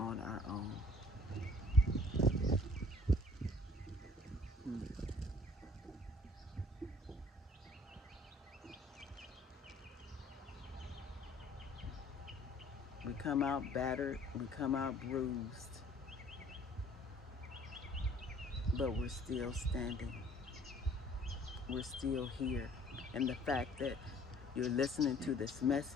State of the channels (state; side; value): normal; both; correlation 0.55